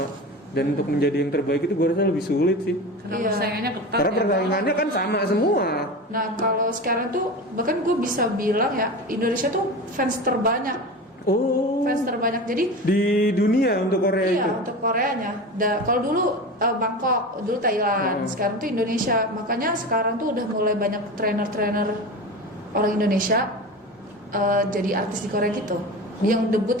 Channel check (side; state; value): both; normal; correlation 0.29